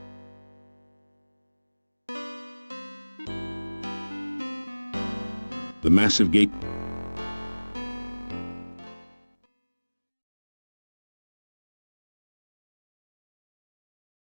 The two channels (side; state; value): both; inverted; correlation -1.00